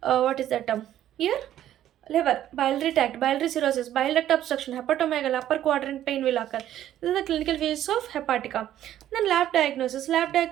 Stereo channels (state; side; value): quieter; left; 12.0 dB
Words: what is that term? Here liver, biliary tract, biliary cirrhosis, bile duct obstruction, hepatomegaly, upper quadrant pain will occur. This is the clinical features of hepatica. Then lab diagnosis. Lab